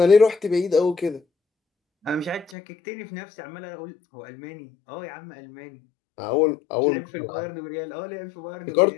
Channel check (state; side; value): drops out; right; at 2.6 s